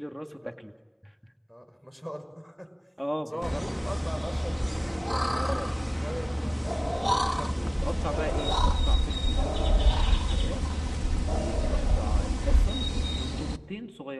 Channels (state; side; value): identical; both; correlation 1.00